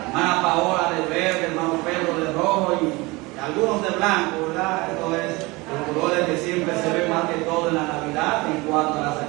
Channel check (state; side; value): quieter; left; 23.5 dB